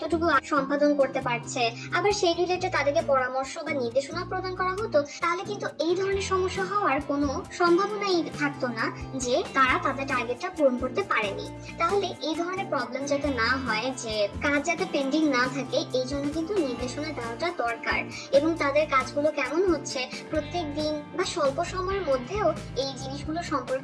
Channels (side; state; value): both; identical; correlation 1.00